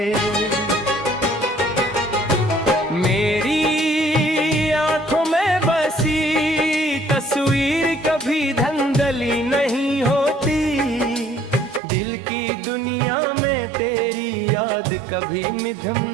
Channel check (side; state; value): left; drops out; at 11.8 s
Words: मेरी आंखों में बसी तस्वीर कभी धंधली नहीं होती, दिल की दुनिया में तेरी याद कभी मिधम